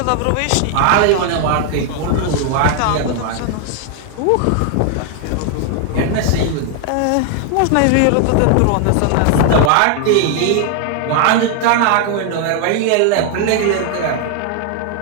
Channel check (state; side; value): different; both; correlation 0.00